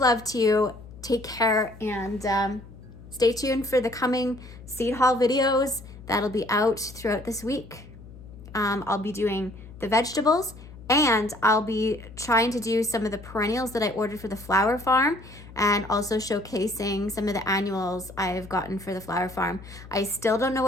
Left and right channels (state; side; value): noise; left; hum, 17 dB below the sound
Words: to you. Take care, and stay tuned for the coming seed haul videos that'll be out throughout this week. I'll be doing the vegetables, and I'll be trying to do some of the perennials that I ordered for the flower farm, and also showcasing some of the annuals I've gotten for the flower farm. I still don't know